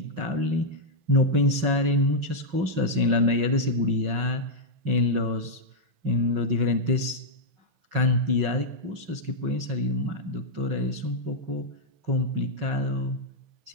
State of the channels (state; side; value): late; left; 6.1 ms